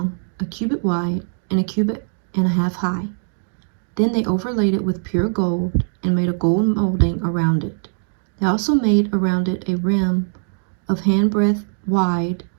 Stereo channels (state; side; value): silent; left; digital silence